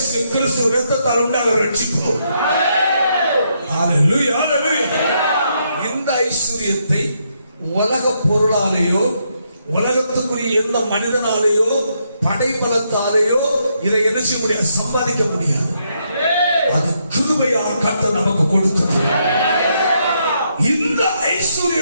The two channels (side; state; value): both; inverted; correlation -0.77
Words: கிறிஸ்து இரத்தத்தால் உண்டான ரட்சிப்பு. ஹல்லேலூயா. ஹல்லேலூயா. இந்த ஐஸ்வர்யத்தை உலக பொருளாலேயோ உலகத்துக்குரிய எந்த மனிதனாலேயோ படைபலத்தாலேயோ இதை என்ன செய்ய முடியாது, சம்பாதிக்க முடியாது. அது கிருபையால் கர்த்தர் நமக்கு கொடுத்தது. இந்த